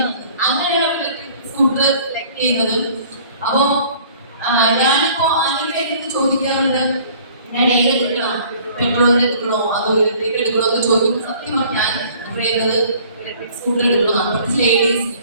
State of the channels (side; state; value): both; inverted; correlation -0.52